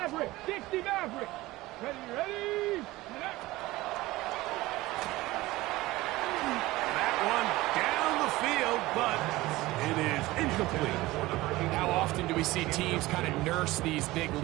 Dixie Maverick. Ready, ready. That one down the field, but It is incomplete. How often do we see teams kind of nurse these big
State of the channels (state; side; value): quieter; left; 18.8 dB